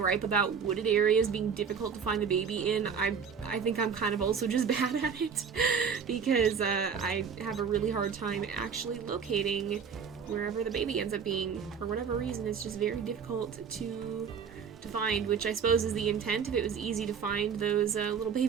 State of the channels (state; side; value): quieter; left; 6.6 dB